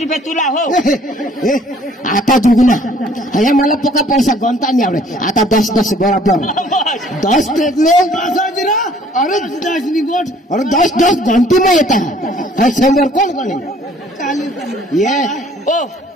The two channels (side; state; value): both; normal; correlation 0.57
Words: रुपये तुला हो आता दुगुना हे मला पका पैसा गणता नाही आवडे आता 10 बरोबर 10 टेकले अरे 10 गोट अरे 10 घंटी में येता है 100 कोण ये ओ